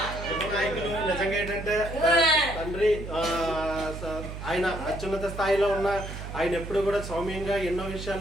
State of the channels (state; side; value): noise; right; hum, 9 dB below the sound